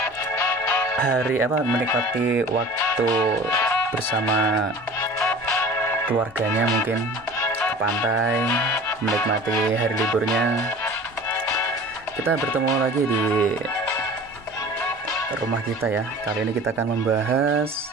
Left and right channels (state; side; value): normal; both; correlation 0.41